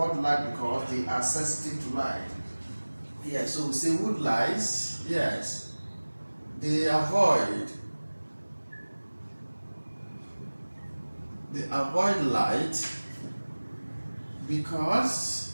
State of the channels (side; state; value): both; inverted; correlation -1.00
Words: light because they are sensitive to light. Yes, so we say woodlice, yes. They avoid light because